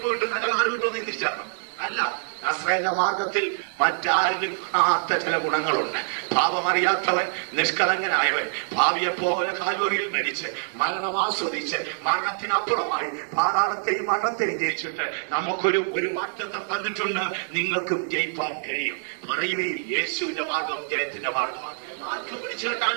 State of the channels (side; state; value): left; silent; 58 dB below the other